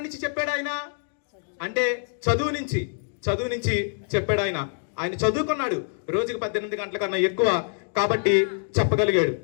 నుంచి చెప్పాడు ఆయన అంటే చదువు నుంచి చెప్పాడు ఆయన. ఆయన చదువుకున్నాడు, రోజుకి 18 గంటల కన్నా ఎక్కువ, కాబట్టి చెప్పగలిగాడు.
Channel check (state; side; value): silent; right; digital silence